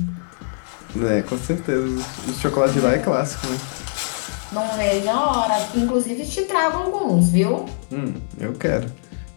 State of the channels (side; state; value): right; silent; digital silence